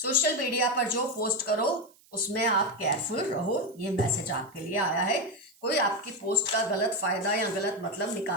मीडिया पर जो पोस्ट करो उसमें आप केयरफुल रहो। ये मैसेज आपके लिए आया है। कोई आपकी पोस्ट का गलत फायदा या गलत मतलब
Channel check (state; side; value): noise; right; hiss, 29 dB below the sound